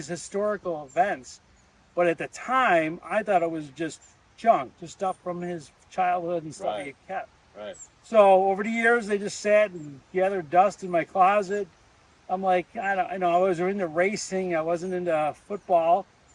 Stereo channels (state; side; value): identical; both; correlation 1.00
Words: historical events. But at the time, I thought it was just junk, just stuff from his childhood and stuff he kept. Right. So over the years, they just sat and gathered dust in my closet. I'm like, I was into racing. I wasn't into football.